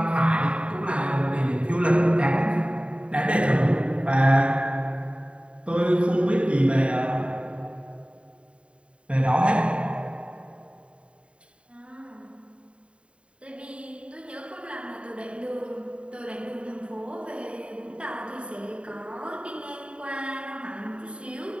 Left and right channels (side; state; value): left; late; 0.059 ms